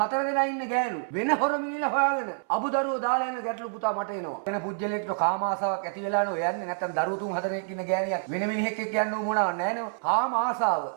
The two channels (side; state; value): left; silent; 60 dB below the other